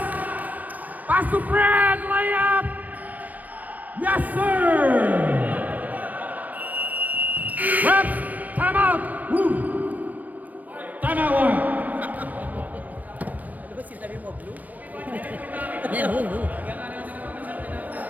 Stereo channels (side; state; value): left; late; 0.078 ms